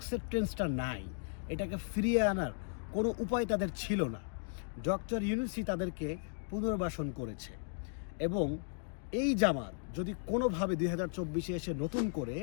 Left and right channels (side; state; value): right; silent; digital silence